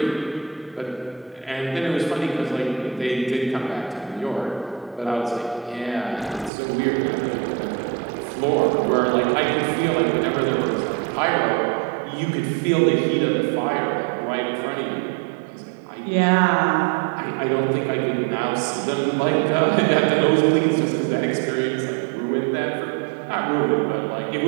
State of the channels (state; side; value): drops out; left; at 6.5 s